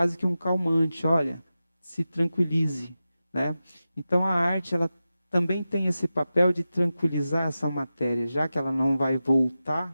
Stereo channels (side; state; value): both; inverted; correlation -0.93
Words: que um calmante, olha, se tranquilize, né? Então a arte, ela também tem esse papel de tranquilizar essa matéria, já que ela não vai voltar